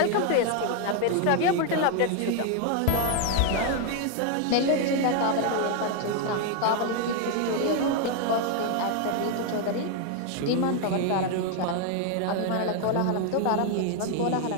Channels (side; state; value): both; different; correlation 0.01